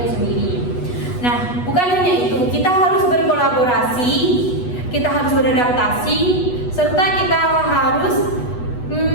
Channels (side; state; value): right; late; 8.2 ms